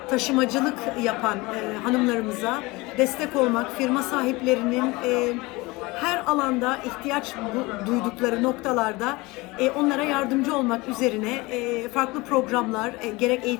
taşımacılık yapan hanımlarımıza destek olmak, firma sahiplerinin her alanda ihtiyaç duydukları noktalarda onlara yardımcı olmak üzerine farklı programlar, gerek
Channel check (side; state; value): right; quieter; 23.0 dB